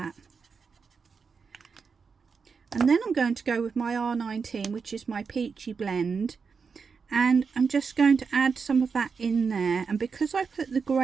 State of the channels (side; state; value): left; quieter; 5.5 dB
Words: And then I'm going to go with my R19, which is my peachy blend, and I'm just going to add some of that in there. And because I put the